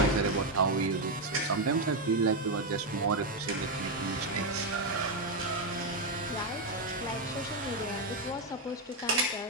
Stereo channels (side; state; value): both; normal; correlation 0.05